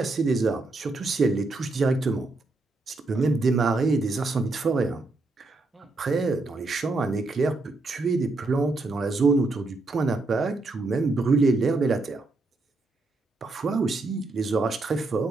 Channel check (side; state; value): left; quieter; 3.3 dB